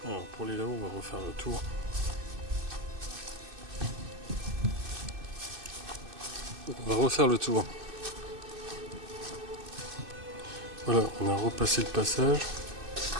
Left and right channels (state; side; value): late; left; 2.6 ms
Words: Alors pour les là-haut, on va refaire le tour. On va refaire le tour. Voilà, on a repassé le passage.